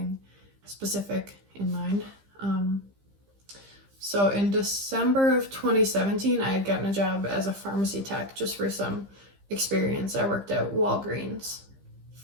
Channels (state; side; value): late; left; 15 ms